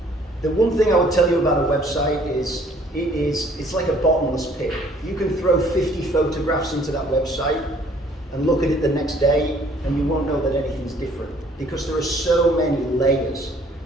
The one thing I would tell you about a website is it's like a bottomless pit. You can throw 50 photographs into that website and look at it the next day and you won't know that anything's different because there are so many layers.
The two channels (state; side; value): normal; both; correlation 0.59